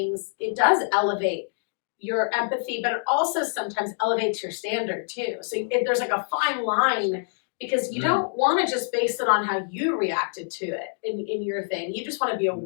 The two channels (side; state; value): right; silent; digital silence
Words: it does elevate your empathy, but it also sometimes elevates your standard too. So there's like a fine line because you don't want to just base it on how you reacted to it in your thing. You just want to be